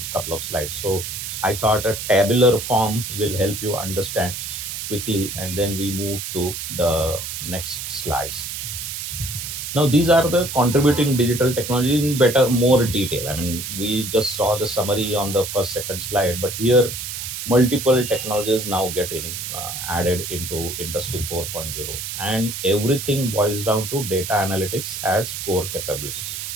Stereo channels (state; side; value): noise; right; hiss, 6 dB below the sound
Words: couple of slides. So I thought a tabular form will help you understand quickly, and then we move to the next slides. Now, these are the contributing digital technology in better, more detail. I mean, we just saw the summary on the first, second slide, but here multiple technologies now get added into Industry 4.0, and everything boils down to data analytics as core capability.